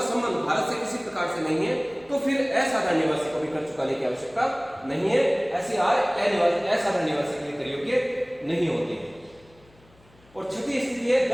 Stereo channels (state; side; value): noise; left; hum, 29 dB below the sound